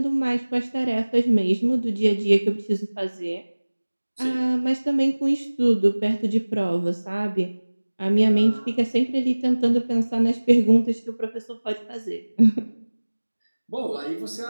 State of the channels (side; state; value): both; inverted; correlation -1.00